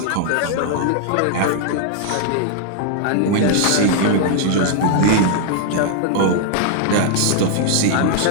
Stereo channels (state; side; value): different; both; correlation 0.00